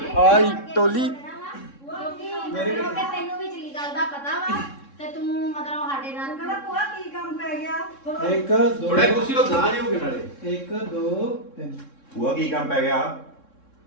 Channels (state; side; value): late; right; 3.6 ms